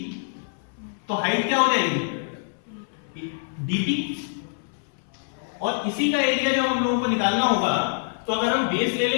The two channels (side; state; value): right; silent; 62 dB below the other